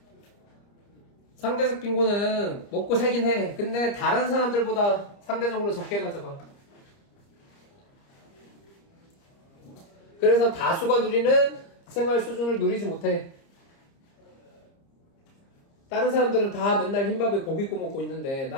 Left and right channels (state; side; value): late; right; 30 ms